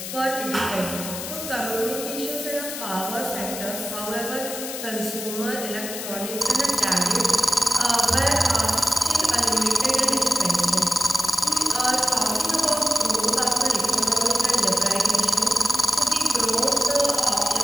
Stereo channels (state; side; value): noise; left; hiss, 7 dB below the sound